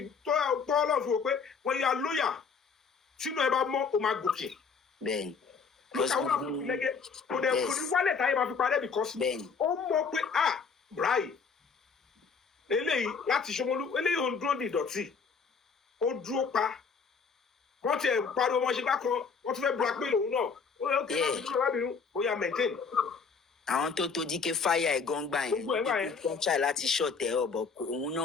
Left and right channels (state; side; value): quieter; right; 5.4 dB